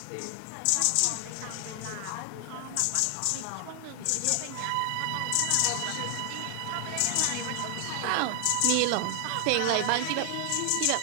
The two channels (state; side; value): different; both; correlation 0.00